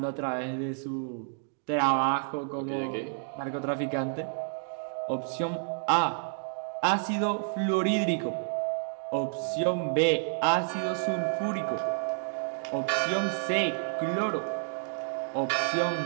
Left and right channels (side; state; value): left; silent; digital silence